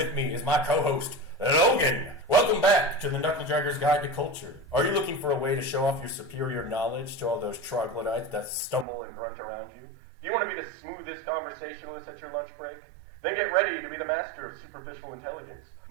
me is my co-host, Logan. Welcome back to the Knuckle Dragger's Guide to Culture. Are you looking for a way to show off your superior knowledge to all those troglodytes that stumble and grunt around you? Do you want to be the smoothest conversationalist at your lunch break? Then get ready to be the master of superficial intelligence.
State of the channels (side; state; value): left; drops out; at 8.8 s